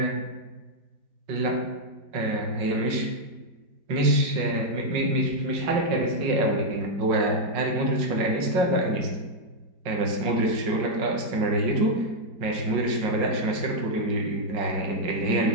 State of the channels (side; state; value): left; late; 5.5 ms